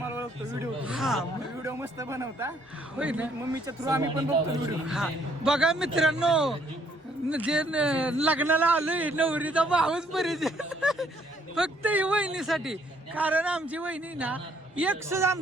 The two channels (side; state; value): both; normal; correlation 0.66